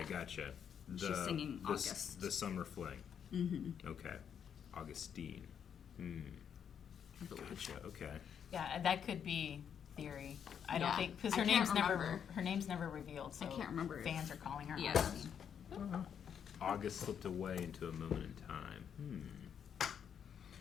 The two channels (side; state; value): right; quieter; 8.1 dB